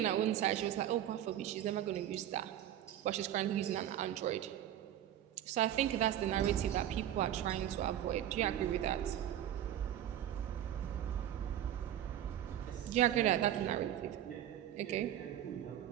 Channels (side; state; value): left; quieter; 11.3 dB